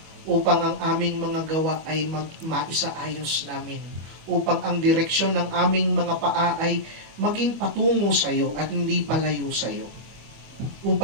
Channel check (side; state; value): left; late; 25 ms